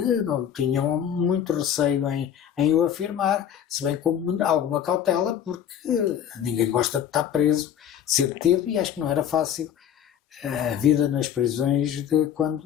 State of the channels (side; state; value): right; quieter; 9.5 dB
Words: não tinham muito receio em o afirmar, se bem com alguma cautela, porque ninguém gosta de estar preso, de ser detido, e acho que não era fácil a vida nas prisões de